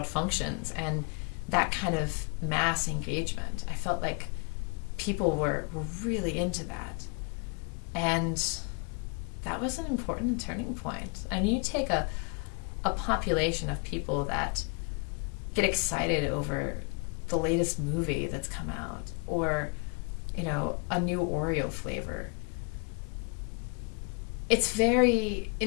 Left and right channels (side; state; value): right; quieter; 35.5 dB